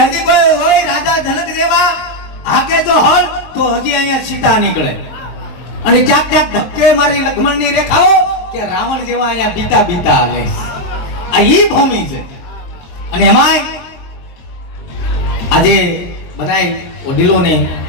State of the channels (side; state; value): right; late; 23 ms